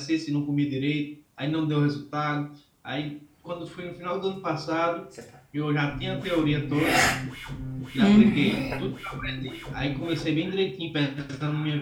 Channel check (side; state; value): both; identical; correlation 1.00